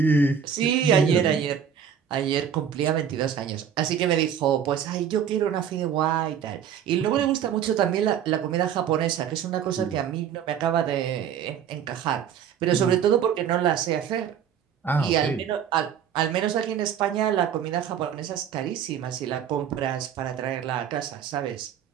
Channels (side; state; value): left; quieter; 8.4 dB